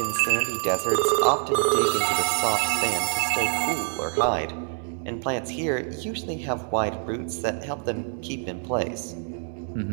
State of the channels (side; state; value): left; silent; 61 dB below the other